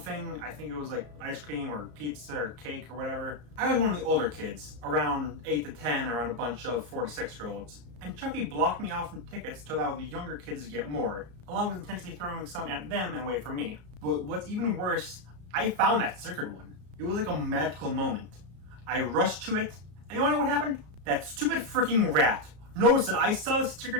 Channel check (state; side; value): late; left; 34 ms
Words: I think it was like ice cream or pizza or cake or whatever. I was one of the older kids, around 8 to 10, around a bunch of 4 to 6-year-olds. And Chucky blocked me off from tickets to allow the younger kids to get more, along with intentionally throwing some at them and away from me. But what's even worse, I found that stickered one. It was like a magical moment. I rushed to it, and you wanna know what happened? That stupid freaking rat noticed that I saw the